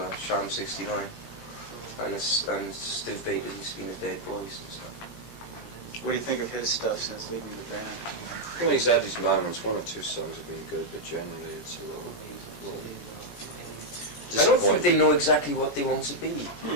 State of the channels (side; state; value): right; late; 17 ms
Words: Sham 69, and Steve Baker, he's been a Dead Boys and stuff. What do you think of his stuff since leaving the band? I think he's had his moments. 1 or 2 songs have been good, but generally it's a little I don't think they know exactly what they want to be.